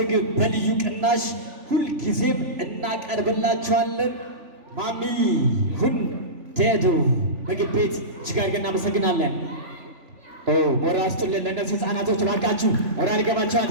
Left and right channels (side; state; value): left; late; 3.4 ms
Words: በልዩ ቅናሽ ሁልጊዜም እናቀርብላችኋለን። ማሚ ሁንዴዶ ምግብ ቤት እጅግ አድርገን እናመሰግናለን። ሞራል ስጡልን ለእነዚህ ህፃናቶች እባካችሁ። ሞራል ይገባቸዋል።